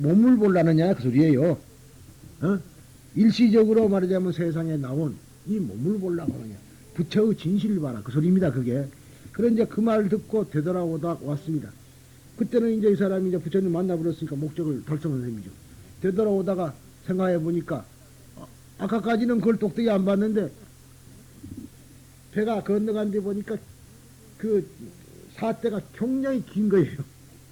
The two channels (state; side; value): identical; both; correlation 1.00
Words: 보려느냐? 그 소리예요. 일시적으로 말하자면 세상에 나온 이 몸을 보려고 하느냐? 부처의 진실을 봐라. 그 소리입니다, 그게. 그래, 이제 그 말을 듣고 되돌아오다 왔습니다. 그때는 이제 이 사람이 이제 부처님 만나버렸으니까 목적을 달성한 셈이죠. 되돌아오다가 생각해 보니까, 아까까지는 그걸 똑똑히 안 봤는데, 배가 건너간 데 보니까 그 사태가 굉장히 긴 거예요.